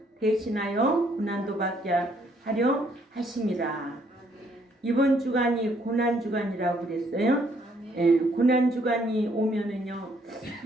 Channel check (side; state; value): both; normal; correlation 0.68